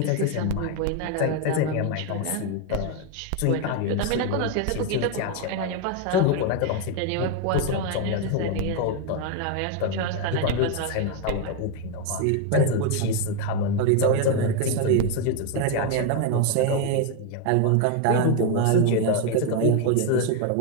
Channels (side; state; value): both; different; correlation 0.01